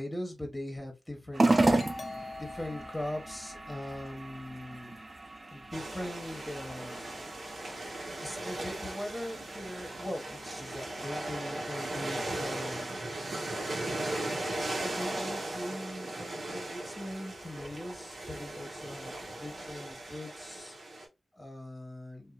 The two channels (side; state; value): both; normal; correlation 0.96